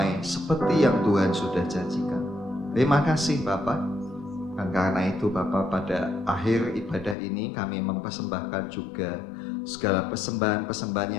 seperti yang Tuhan sudah janjikan. Terima kasih Bapak. Dan karena itu Bapak, pada akhir ibadah ini kami mempersembahkan juga segala persembahan-persembahan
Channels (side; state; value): right; drops out; at 7.2 s